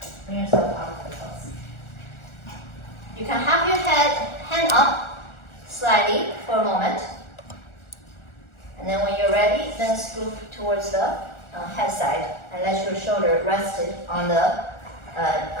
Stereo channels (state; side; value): late; right; 1.4 ms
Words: Bring yourself out of the pose. You can have your hand up slightly for a moment. And then when you're ready, then scoop towards the head side and let your shoulder rest on the